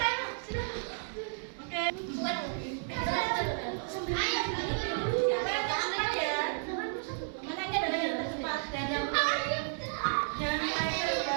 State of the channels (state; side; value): silent; left; digital silence